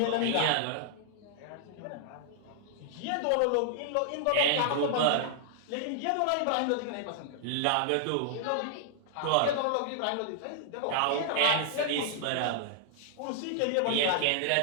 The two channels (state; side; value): different; both; correlation 0.00